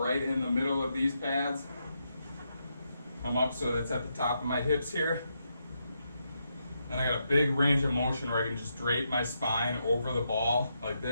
right in the middle of these pads. Come up so that's at the top of my hips here. And I got a big range of motion where I can just drape my spine over the ball like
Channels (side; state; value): both; inverted; correlation -0.82